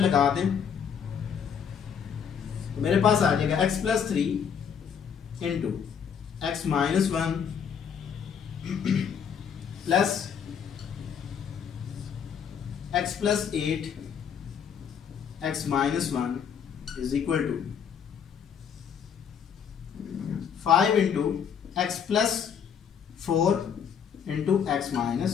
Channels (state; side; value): quieter; right; 7.5 dB